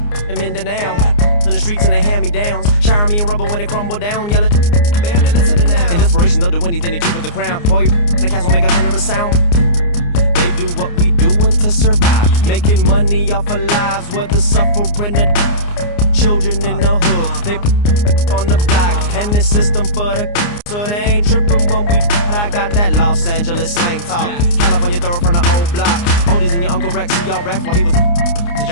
in Mindanao in the streets and they hand me downs, shower me in rubber when they crumble down, yelling, man, they listening now. In desperation, they'll do anything to keep it the crown. Boy, the cats will make a thunderous sound. They do what we doing to survive, making money off of lives, whether suffering or children in the hood. They on the block and the system for the so they ain't tripping when we. I got that Los Angeles slang talk, California throw from the old block. Oldies and your Uncle Rex, see y'all Rex while he was.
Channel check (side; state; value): right; late; 29 ms